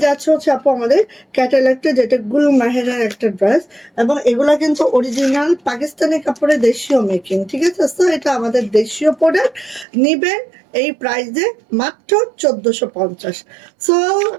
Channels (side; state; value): left; drops out; at 9.9 s